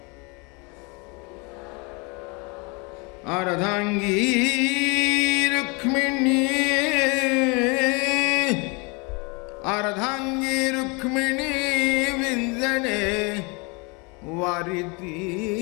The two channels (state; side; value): quieter; right; 29.8 dB